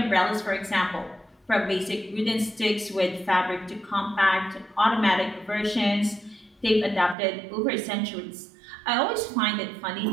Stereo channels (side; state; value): left; drops out; at 7.2 s